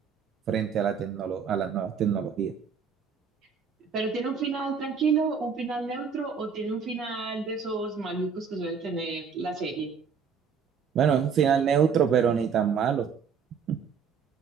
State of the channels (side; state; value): left; quieter; 6.5 dB